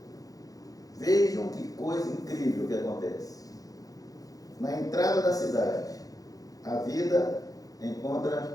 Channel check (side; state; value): right; late; 0.17 ms